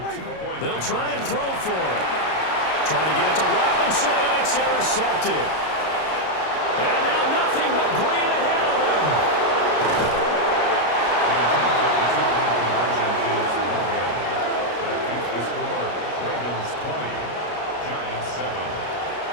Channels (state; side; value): late; right; 33 ms